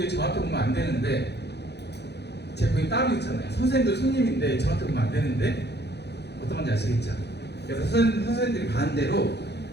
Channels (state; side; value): late; right; 0.49 ms